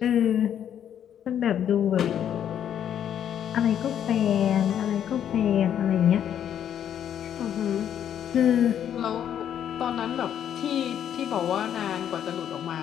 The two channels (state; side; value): quieter; right; 9.6 dB